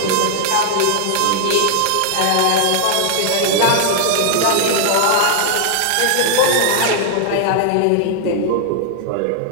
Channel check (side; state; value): both; different; correlation -0.01